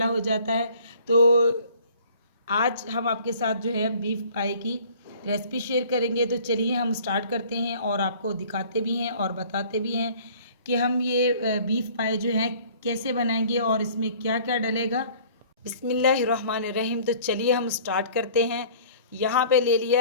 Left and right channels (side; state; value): both; inverted; correlation -0.52